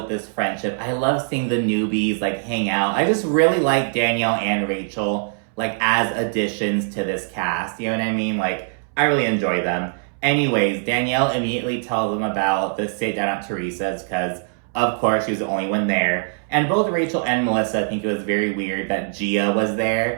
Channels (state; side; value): silent; left; 64 dB below the other